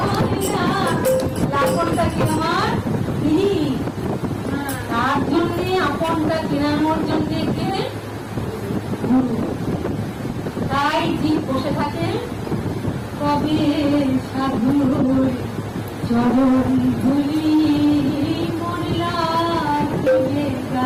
হয় না। লাখনটা কি আমার তিনি, তার জন্যে আপনটা কেনানোর জন্যে কে? গুরু। তাই ঠিক বসে থাকে, কবে সাধুর চরণ ধুলি মরিলা দেবে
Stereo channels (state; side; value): identical; both; correlation 1.00